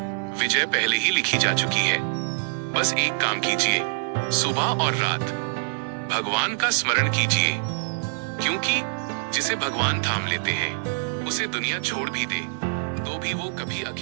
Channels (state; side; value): silent; left; 58 dB below the other